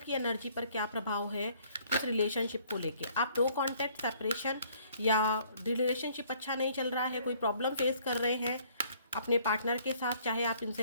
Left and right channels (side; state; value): both; inverted; correlation -0.60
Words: एनर्जी पर क्या प्रभाव है इस रिलेशनशिप को लेके। आप नो कॉन्टैक्ट, सेपरेशन या रिलेशनशिप अच्छा नहीं चल रहा है, कोई प्रॉब्लम फेस कर रहे हैं अपने पार्टनर के साथ, चाहे आप